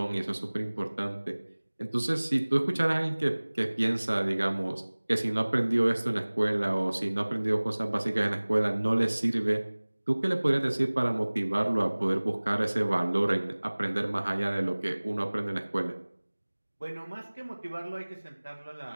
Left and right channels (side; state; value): both; inverted; correlation -1.00